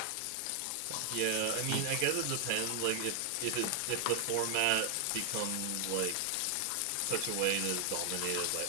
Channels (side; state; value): both; different; correlation 0.00